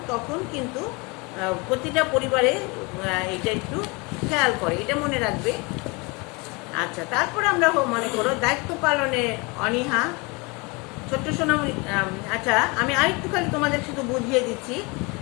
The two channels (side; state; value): right; quieter; 28.0 dB